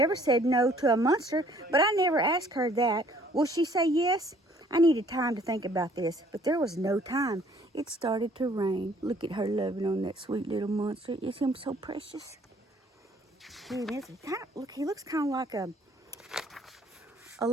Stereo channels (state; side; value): normal; both; correlation 0.59